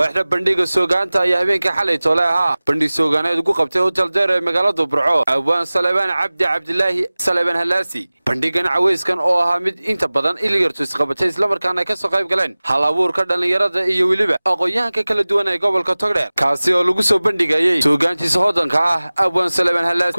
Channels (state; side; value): inverted; both; correlation -0.99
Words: bandhiga soogaanta ayaa habeenka xalay toolaha bandhig soogaaneed ugu qabtay hotel deer ee magaalada Burco Abaan Salebaan Cabdilaahi Salebaan Halaasi bandhigan caweyskan oo ahaa mid inta badan ilyartu isqabatay isla markaana ka soo qayb galeen hal abuurka dhalinyarada iyo waliba aqoonyahanka kala duwan ee gobolka Togdheer kaasi oo lagu soo bandhigayay soogaantiisa hodanka ah Abaan Salebaan Halaasi